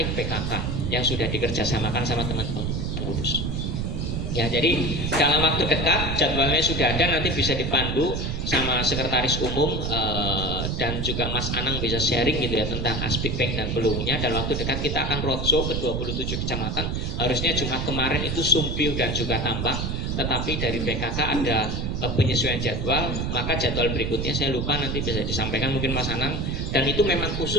PKK yang sudah dikerjasamakan sama teman-teman pengurus. Ya, jadi dalam waktu dekat jadwalnya sudah ada, nanti bisa dipandu sama sekretaris umum dan juga Mas Anang bisa sharing gitu ya tentang Aspik Bank dan peluangnya. Dalam waktu dekat kita akan roadshow ke 27 kecamatan. Harusnya Jumat kemarin itu Sumpiu dan juga Tambak, tetapi dari PKK ada penyesuaian jadwal, maka jadwal berikutnya saya lupa, nanti bisa disampaikan mungkin Mas Anang. Dan itu memang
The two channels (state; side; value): noise; right; rumble, 1 dB below the sound